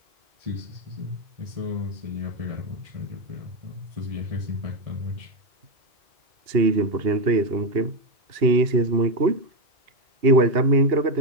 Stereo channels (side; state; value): left; late; 2.8 ms